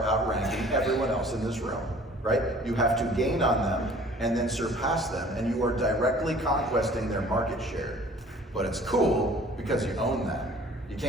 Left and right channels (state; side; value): normal; both; correlation 0.51